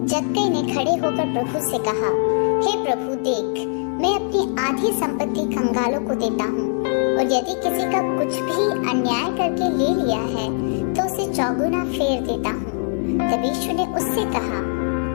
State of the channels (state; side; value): silent; right; 65 dB below the other